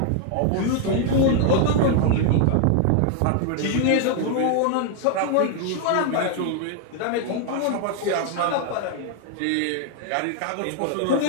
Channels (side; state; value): both; different; correlation 0.00